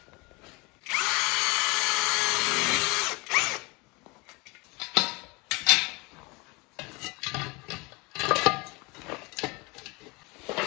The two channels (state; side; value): quieter; right; 26.8 dB